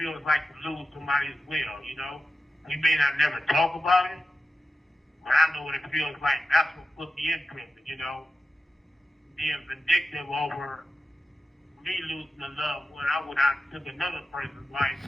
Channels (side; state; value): both; normal; correlation 0.92